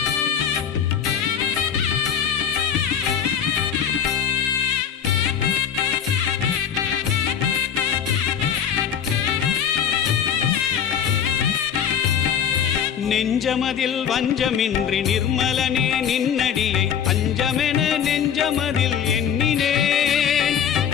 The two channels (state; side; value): quieter; right; 8.3 dB